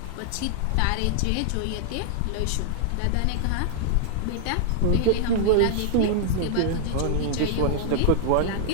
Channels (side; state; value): both; different; correlation -0.01